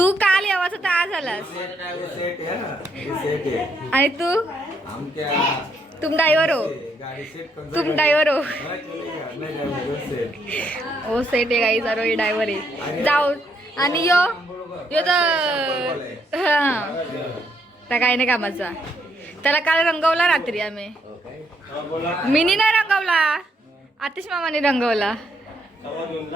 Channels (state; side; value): normal; both; correlation 0.74